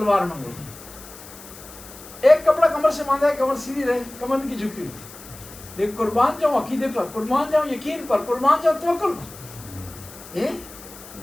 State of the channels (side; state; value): left; noise; hiss, 17 dB below the sound